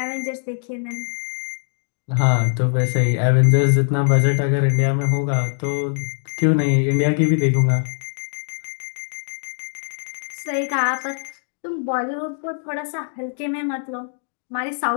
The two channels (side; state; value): right; silent; digital silence